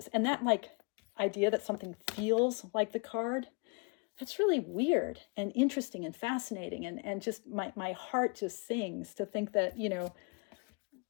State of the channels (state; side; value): quieter; right; 34.5 dB